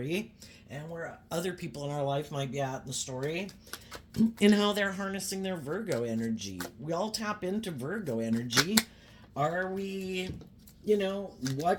and where other people in our life might be at in the story and how they're harnessing their Virgo energy. We all tap into Virgo energy. Are we,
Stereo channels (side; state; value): both; identical; correlation 1.00